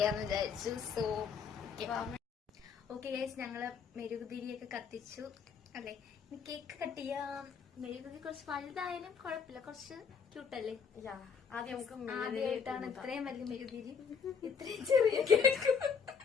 വിചാരിച്ചു. സോ ഓക്കെ ഗൈസ്, ഞങ്ങള് മെഴുകുതിരിയൊക്കെ കത്തിച്ചു, അല്ലെ? കേക്ക് കട്ട് ചെയ്യാം. മെഴുകുതിരി കുറച്ച് വലുതായാലും കുഴപ്പമില്ല, കുറച്ച് ക്യൂട്ടല്ലേ? ആദ്യമായിട്ടാണ് ഇത്രയും വലിയ മെഴുകുതിരി, ഇത്രയും ചെറിയ കേക്ക്.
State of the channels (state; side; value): quieter; right; 6.3 dB